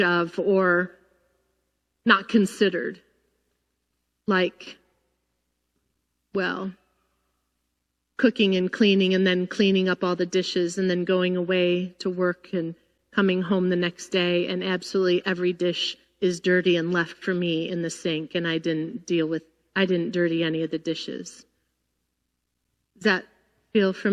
of or not considered. Like, well, cooking and cleaning and then cleaning up all the dishes and then going away to work and coming home the next day and absolutely every dish is dirty and left for me in the sink and I didn't dirty any of the dishes. Does that feel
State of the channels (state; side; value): identical; both; correlation 1.00